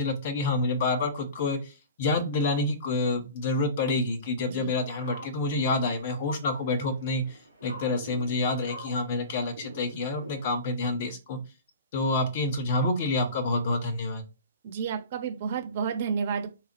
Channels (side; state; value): both; inverted; correlation -0.35